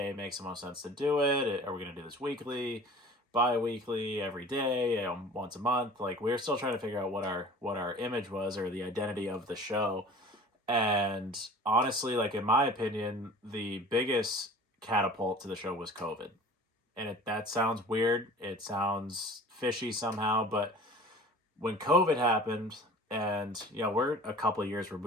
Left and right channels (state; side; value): normal; both; correlation 0.43